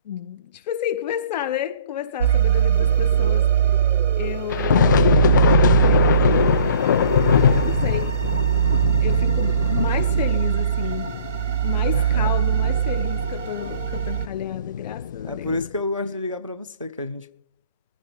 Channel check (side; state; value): both; inverted; correlation -0.52